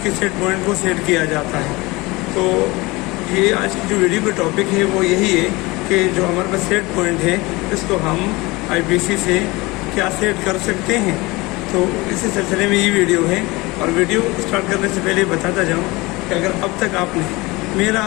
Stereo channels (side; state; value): right; quieter; 22.8 dB